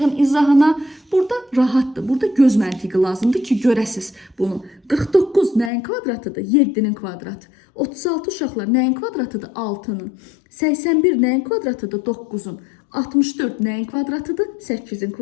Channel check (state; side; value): drops out; right; at 5.7 s